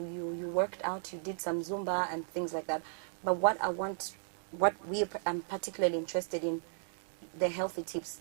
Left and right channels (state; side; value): silent; left; digital silence